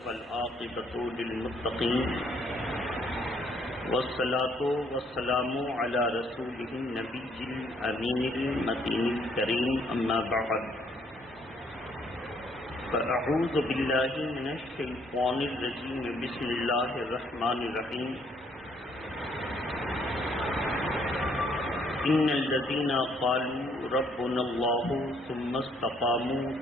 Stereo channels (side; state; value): both; normal; correlation 0.67